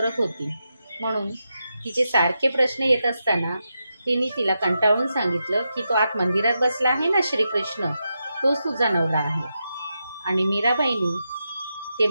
होती, म्हणून तिचे सारखे प्रश्न येत असताना तिने तिला कंटाळून सांगितलं की तो आत मंदिरात बसला आहे ना श्रीकृष्ण, तोच तुझा नवरा आहे। आणि मीराबाईंनी ते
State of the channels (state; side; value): inverted; both; correlation -0.87